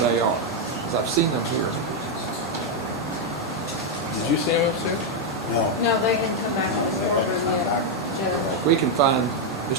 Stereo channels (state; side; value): normal; both; correlation 0.01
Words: are? 'Cause I've seen them here. Did you see them upstairs? No, they didn't come back to the courtroom yet, Judge. We can find